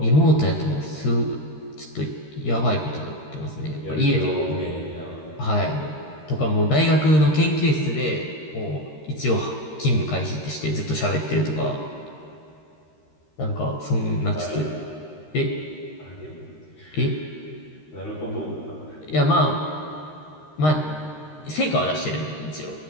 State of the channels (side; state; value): right; late; 13 ms